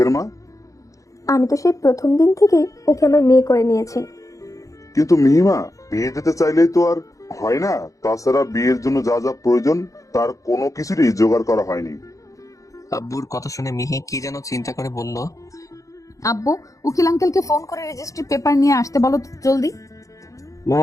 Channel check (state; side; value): late; right; 0.16 ms